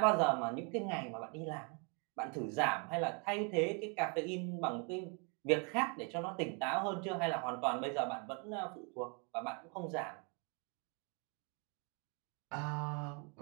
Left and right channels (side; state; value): left; quieter; 35.7 dB